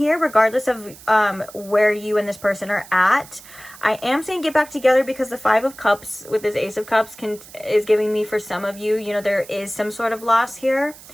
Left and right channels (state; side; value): noise; right; hiss, 19 dB below the sound